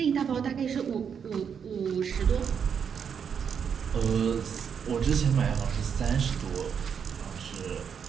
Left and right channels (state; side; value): quieter; left; 7.2 dB